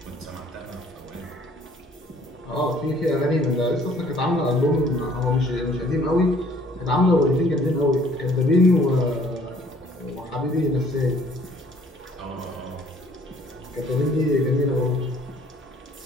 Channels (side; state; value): both; normal; correlation 0.58